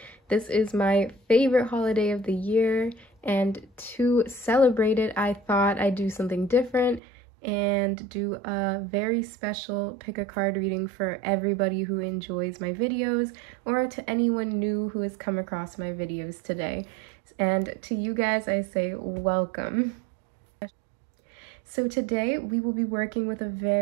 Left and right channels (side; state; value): left; drops out; at 7.0 s